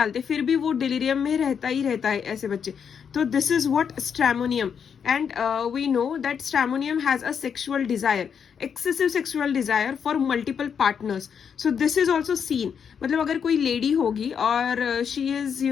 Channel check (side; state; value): right; quieter; 7.2 dB